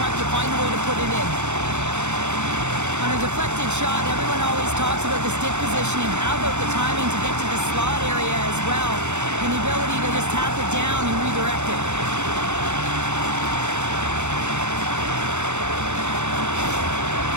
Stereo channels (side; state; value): left; late; 0.83 ms